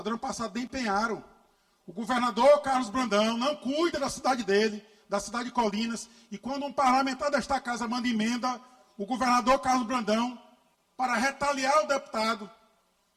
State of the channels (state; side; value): identical; both; correlation 1.00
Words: do ano passado nem empenharam. O governador Carlos Brandão não cuida da cidade dele, da cidade de Colinas, e quando um parlamentar desta casa manda emenda, o governador Carlos Brandão, para retaliar o deputado,